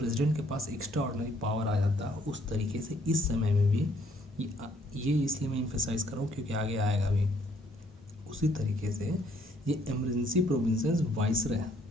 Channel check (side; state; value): both; normal; correlation 0.66